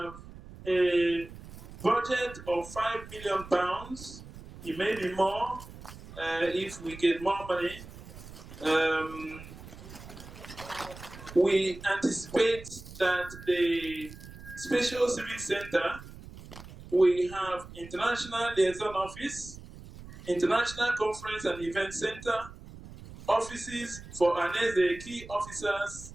a budget of £5 million. It may be more if we get more money. We anticipate that the Special Civic Center we have International Liaison Office, International Conference and Event Center, offices for Ohaneze key officers.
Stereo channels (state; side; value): noise; right; rumble, 16 dB below the sound